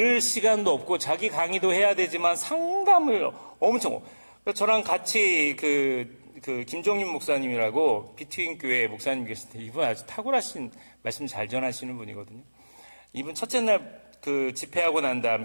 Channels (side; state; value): both; inverted; correlation -1.00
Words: 시간도 없고 자기 강의도 해야 되지만 상담을 엄청. 저랑 같이 그 김종인 목사님이라고 비트윈 교회 목사님 계신데 이분 아주 탁월하신 말씀 잘 전하시는 분이거든요. 이분 첫째 날 그 집회하고 난